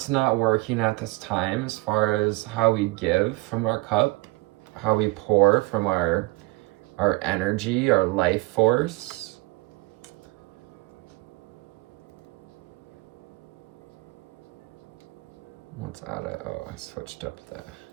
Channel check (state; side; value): quieter; left; 22.8 dB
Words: not working at this time as far as how we give from our cup, how we pour from our energy, our life force. What's out of, I switched up the